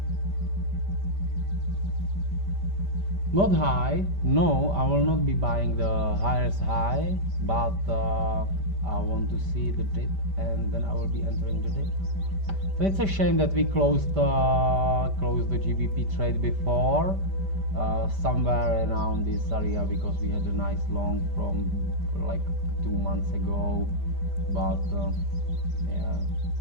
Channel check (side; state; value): left; late; 5.1 ms